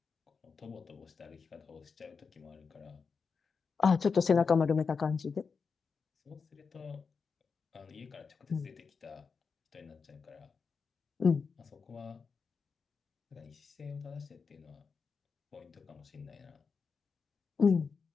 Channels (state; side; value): quieter; right; 5.3 dB